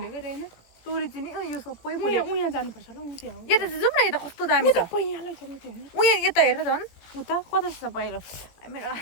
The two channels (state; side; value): late; right; 17 ms